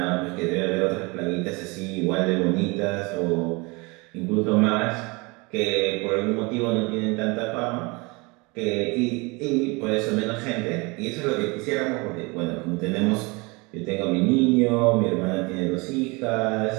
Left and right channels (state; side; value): quieter; left; 26.8 dB